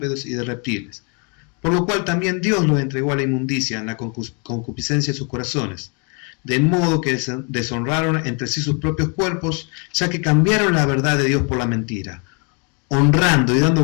y de reptiles. Por lo cual también Dios los entregó a la inmundicia en la concupiscencia de sus corazones, de modo que deshonraron entre sí sus propios cuerpos, ya que cambiaron la verdad de Dios por la mentira, honrando y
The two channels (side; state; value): right; quieter; 36.4 dB